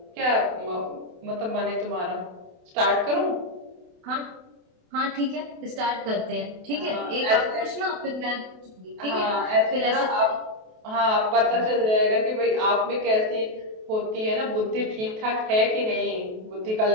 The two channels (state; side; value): late; left; 28 ms